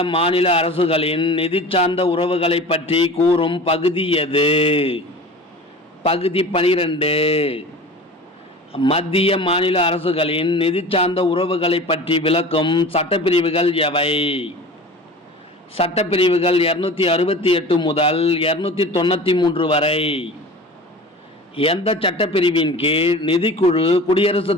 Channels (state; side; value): normal; both; correlation 0.37